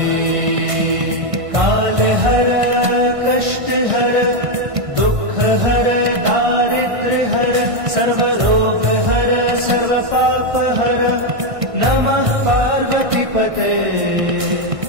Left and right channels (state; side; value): late; left; 1.5 ms